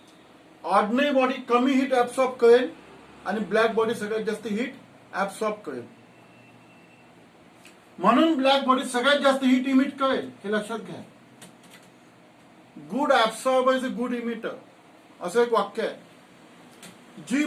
ऑर्डिनरी बॉडी कमी हीट ऍब्सॉर्ब करेल आणि ब्लॅक बॉडी सगळ्यात जास्त हीट ऍब्सॉर्ब करेल. म्हणून ब्लॅक बॉडी सगळ्यात जास्त हीट इमिट करेल. हे लक्षात घ्या. Good absorber is a good emitter असं एक वाक्य आहे. जी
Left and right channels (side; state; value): both; identical; correlation 1.00